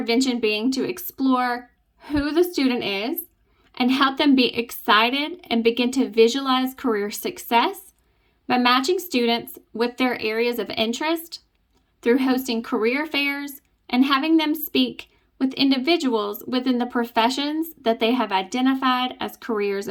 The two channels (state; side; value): identical; both; correlation 1.00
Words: being to explore who the student is and help them be excited and begin to visualize career success by matching students with their areas of interest through hosting career fairs and having them speak with individuals within the professions that they have identified as careers